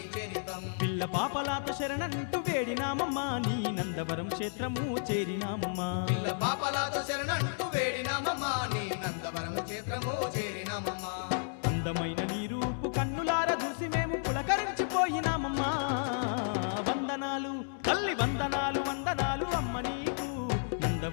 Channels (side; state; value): right; silent; 56 dB below the other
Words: చరితం. పిల్ల పాపలాత శరణంటూ వేడినామమ్మా నీ నందవరం క్షేత్రము చేరినామమ్మా. పిల్ల పాపలాతో శరణంటూ వేడినామమ్మా నీ నందవరం క్షేత్రము చేరినామమ్మా. అందమైన నీ రూపు కన్నులార చూసి మేము పులకరించిపోయినామమ్మా. వందనాలు తల్లి వందనాలు వందనాలు అమ్మ నీకు